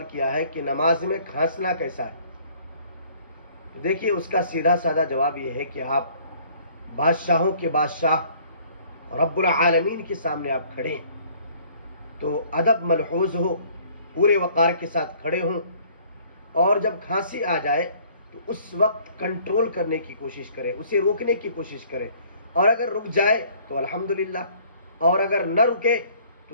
کیا ہے کہ نماز میں کھانسنا کیسا ہے؟ دیکھیے اس کا سیدھا سادہ جواب یہ ہے کہ آپ بادشاہوں کے بادشاہ رب العالمین کے سامنے آپ کھڑے ہیں تو ادب ملحوظ ہو، پورے وقار کے ساتھ کھڑے ہوں، اور جب کھانسی آ جائے تو اس وقت کنٹرول کرنے کی کوشش کرے، اسے روکنے کی کوشش کرے، اور اگر رک جائے تو الحمدللہ، اور اگر نہ رکے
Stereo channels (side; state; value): both; inverted; correlation -0.57